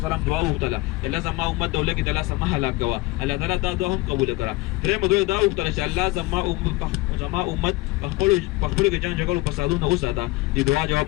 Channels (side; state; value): right; quieter; 20.9 dB